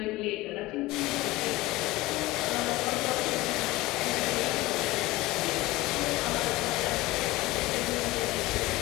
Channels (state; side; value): quieter; right; 18.9 dB